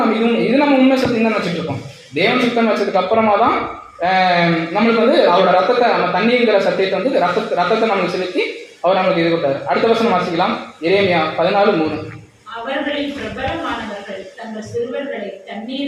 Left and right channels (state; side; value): identical; both; correlation 1.00